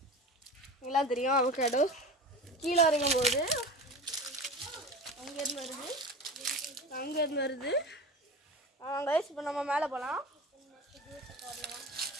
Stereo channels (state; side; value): normal; both; correlation 0.32